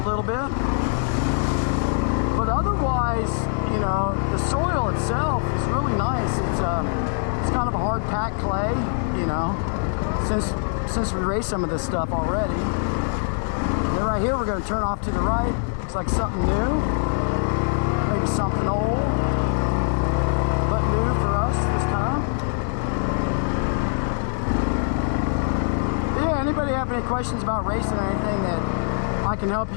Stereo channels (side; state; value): right; silent; 63 dB below the other